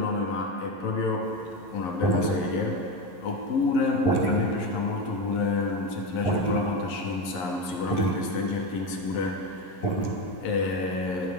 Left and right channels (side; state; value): right; late; 11 ms